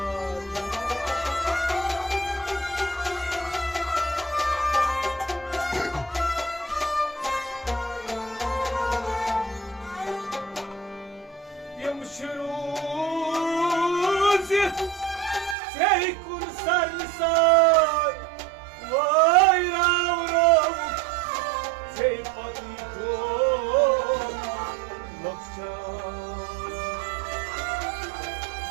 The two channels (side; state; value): left; drops out; at 15.6 s